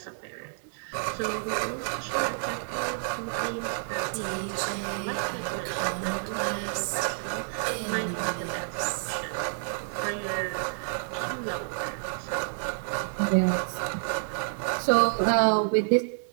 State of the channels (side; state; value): left; silent; digital silence